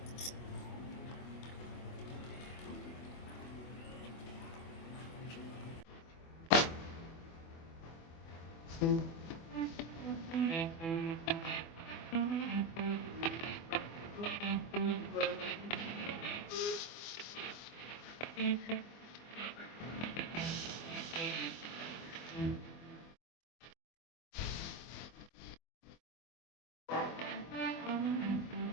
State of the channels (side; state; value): right; late; 24 ms